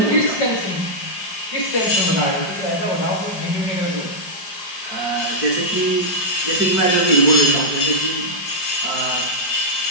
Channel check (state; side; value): late; right; 5.1 ms